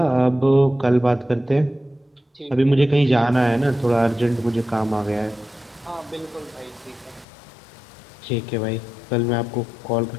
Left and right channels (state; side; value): drops out; right; at 7.2 s